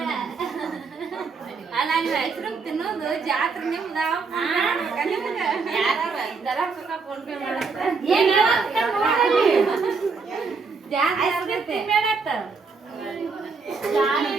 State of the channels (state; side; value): quieter; left; 4.7 dB